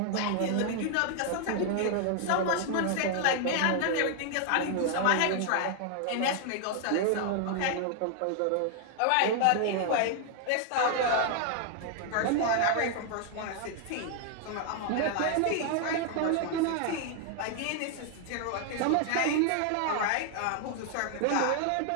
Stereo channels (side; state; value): both; different; correlation 0.00